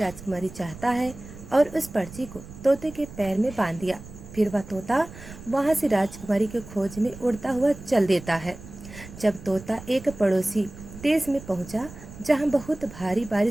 चाहता है, और उस पर्ची को तोते के पैर में बांध दिया। फिर वह तोता वहां से राजकुमारी की खोज में उड़ता हुआ चल देता है। जब तोता एक पड़ोसी देश में पहुंचा जहां बहुत भारी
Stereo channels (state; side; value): noise; right; rumble, 15 dB below the sound